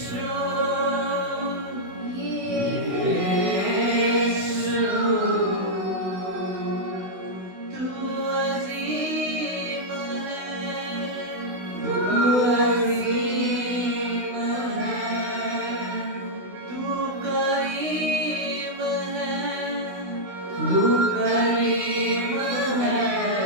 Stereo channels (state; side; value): late; left; 16 ms